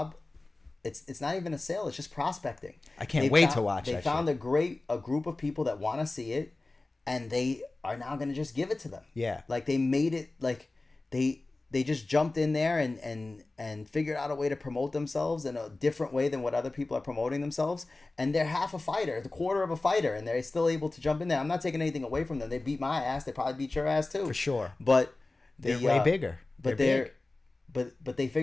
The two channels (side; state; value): right; quieter; 3.2 dB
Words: It's not even a sale. It's just prospecting. I can't wait to watch. They found a group of people that want to see it, and they are now gonna just give it to them. Yeah, like they made it like they just jumped in there and figured out a way to promote themselves in a different way than what other people are promoting themselves. And they're half a fighter, the quarter of a fighter, and they're still able to jump in there. I'm not taking anything away from them. They beat my ass. They probably beat your ass too. For sure. But they're way bigger. But but they